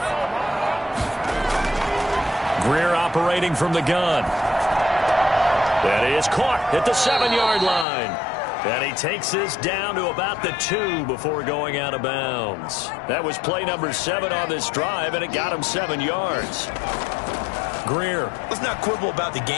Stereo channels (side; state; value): right; drops out; at 7.9 s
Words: Greer operating from the gun. That is caught at the 7-yard line. And he takes this down to about the 2 before going out of bounds. That was play number 7 on this drive, and it got him 7 yards. Greer. Let's not quibble about the